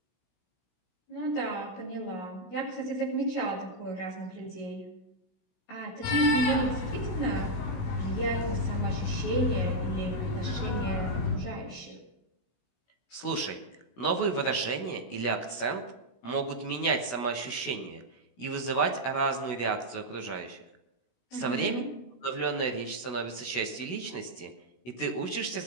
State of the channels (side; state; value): right; late; 16 ms